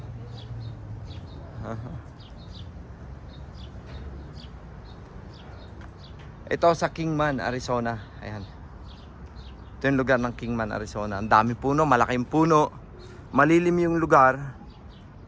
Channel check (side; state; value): both; identical; correlation 1.00